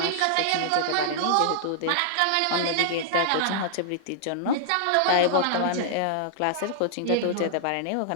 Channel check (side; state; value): both; different; correlation -0.01